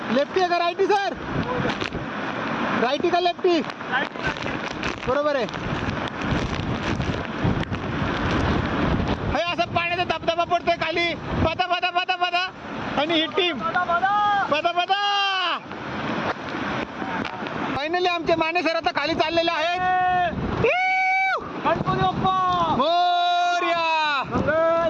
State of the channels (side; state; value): both; identical; correlation 1.00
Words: लेफ्टी आहे का राईटी सर? राईटी का लेफ्टी? बरोबर आहे. हे असं पाण्याचा धबधबा पडतोय खाली पदा पदा पदा पदा आणि ही टीम पदा पदा. फायनली आमचे माने सर आता खाली चाललेले आहेत. Morya.